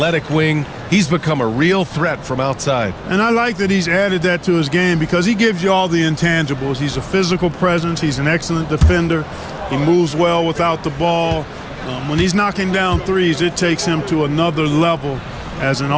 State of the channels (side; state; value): both; identical; correlation 1.00